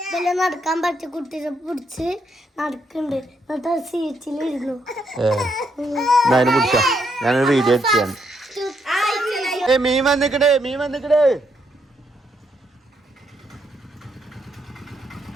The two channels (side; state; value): both; normal; correlation 0.76